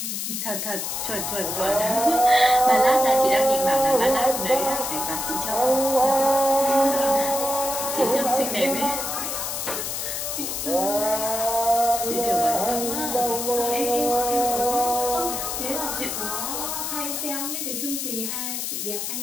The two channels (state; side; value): noise; left; hiss, 3 dB below the sound